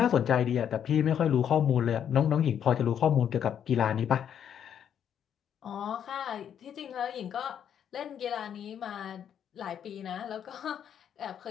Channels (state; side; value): quieter; right; 8.9 dB